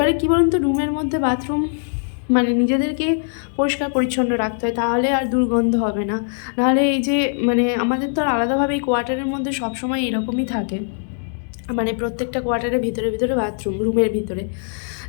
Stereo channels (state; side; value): silent; right; digital silence